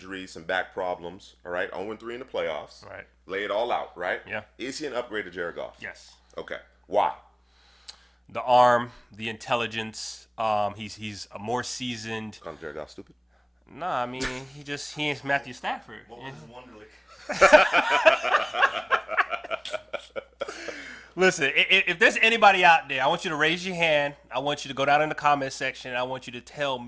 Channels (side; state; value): both; identical; correlation 1.00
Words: some back problems, all right, 0-3 in the playoffs, Right. lay it all out, right? Yeah. Is he an upgrade to Jared Goff? Yes. Okay. Why? The arm, the intelligence. He's a more seasoned. Call Jared Goff stupid? Nah, I mean he ain't Matthew Stafford. What was Wonderlic? Listen, if there's anybody out there, I want you to raise your hand. I want you to go down in the comment section. I want you to tell